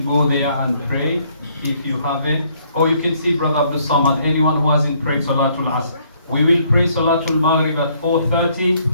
go there and pray if you haven't. Or you can see Brother Abdul Samad, anyone who hasn't prayed Salatul Asr. We will pray Salatul Maghrib at 4:30,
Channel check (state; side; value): inverted; both; correlation -0.66